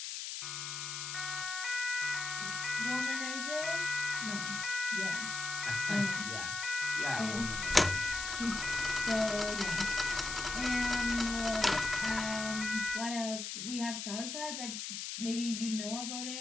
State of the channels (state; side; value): noise; left; hiss, 5 dB below the sound